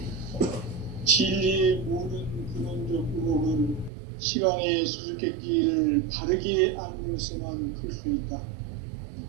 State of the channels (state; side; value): drops out; left; at 3.9 s